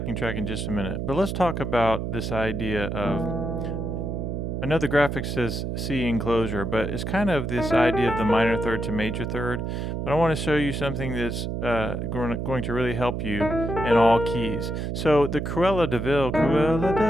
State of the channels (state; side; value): noise; right; hum, 3 dB below the sound